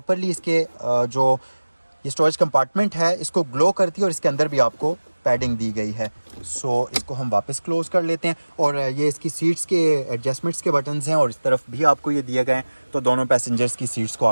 इसके जो ये स्टोरेज कंपार्टमेंट है इसको ग्लो करती है और इसके अंदर भी आपको पैडिंग दी गई है। सो इसको हम वापस क्लोज कर लेते हैं और ये इसकी सीट्स के एडजस्टमेंट्स के बटन्स हैं और इस तरफ भी आपको ये दिए गए हैं, तो दोनों पैसेंजर्स की सीट्स को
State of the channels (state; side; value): inverted; both; correlation -1.00